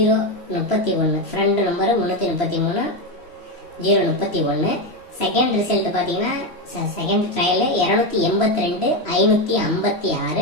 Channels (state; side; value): late; right; 3.0 ms